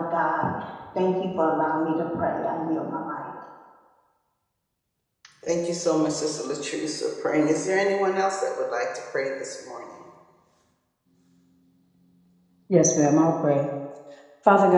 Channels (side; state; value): both; identical; correlation 1.00